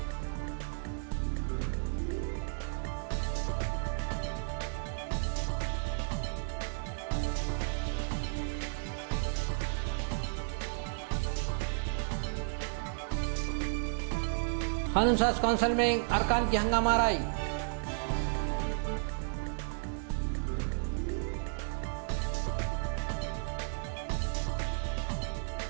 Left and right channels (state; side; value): silent; left; 56 dB below the other